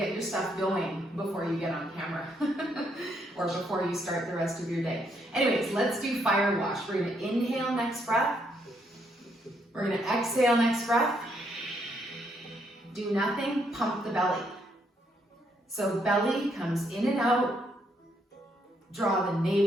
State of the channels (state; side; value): normal; both; correlation 0.74